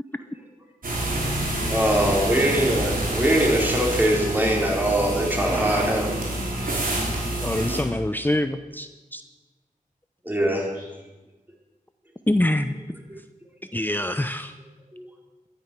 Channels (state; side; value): normal; both; correlation 0.71